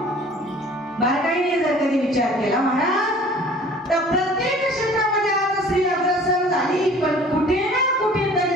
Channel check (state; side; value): normal; both; correlation 0.49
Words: बारकाईने जर कधी विचार केला महाराज, तर प्रत्येक क्षेत्रामध्ये आज स्त्री अग्रसर झाली, पण कुठे ना